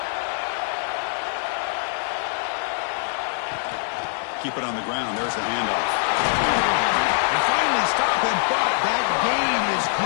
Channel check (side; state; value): right; silent; digital silence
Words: Keep it on the ground. There's the handoff. And finally stop him, but that gain is